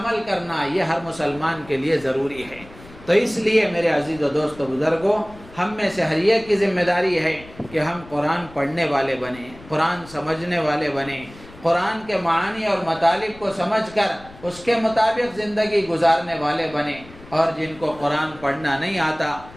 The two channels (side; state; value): left; noise; rumble, 20 dB below the sound